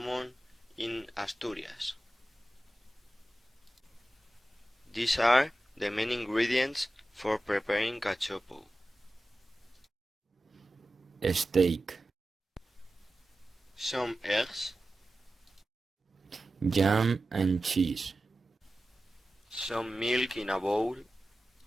in Asturias. These are the main ingredients for preparing cachopo. Steak, Some eggs, jam and cheese, some milk in a bowl,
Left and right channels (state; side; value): normal; both; correlation 0.94